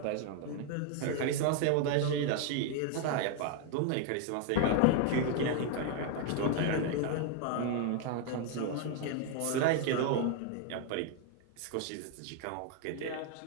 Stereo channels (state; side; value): different; both; correlation 0.00